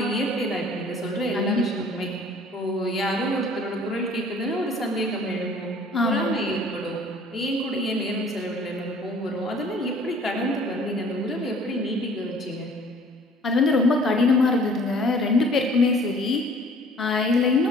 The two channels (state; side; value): normal; both; correlation 0.53